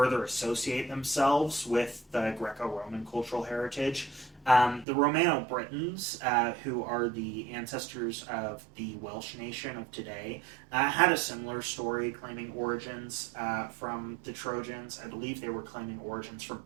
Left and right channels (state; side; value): drops out; left; at 4.9 s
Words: associate themselves with the Greco-Roman cultural heritage. The Romano-Britons, who are the ancestors of the Welsh nation of today, had a similar story claiming origins from the Trojans. I believe they were claiming origins from